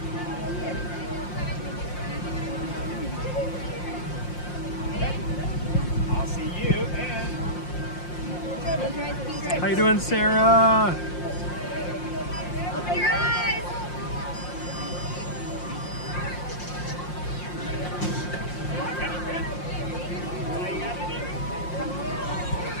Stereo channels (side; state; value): right; late; 5.6 ms